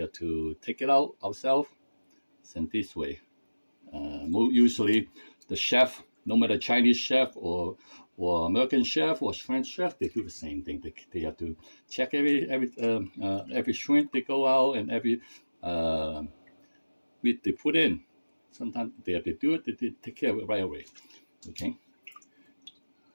to take it out ourselves. And this way, usually the chef, no matter Chinese chef or American chef or French chef, they do the same thing. They have to check every shrimp they go out and every meat they put in. Sometimes they have to do it. They take care of it right away. Okay.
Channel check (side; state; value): both; inverted; correlation -1.00